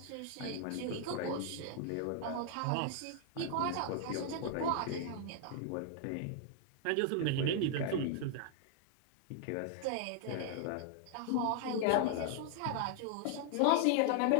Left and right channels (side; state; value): both; different; correlation 0.00